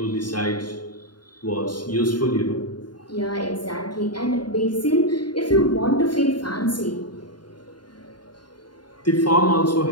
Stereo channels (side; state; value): right; late; 0.71 ms